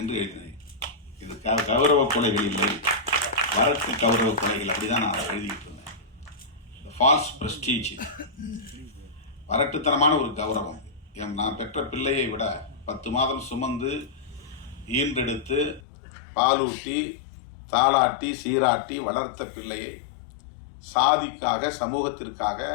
எழுதினேன். இது கௌரவ கொலைகள் இல்லை, வரட்டு கௌரவ கொலைகள், அப்படிதான் நான் எழுதிட்டு இருந்தேன். ஃபால்ஸ் பிரஸ்டீஜ், வரட்டுத்தனமான ஒரு கௌரவம். நான் பெற்ற பிள்ளையை விட 10 மாதம் சுமந்து ஈன்றெடுத்து பாலூட்டி தாளாட்டி சீராட்டி வளர்த்த பிள்ளையை சாதிக்காக, சமூகத்திற்காக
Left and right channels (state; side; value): drops out; right; at 15.8 s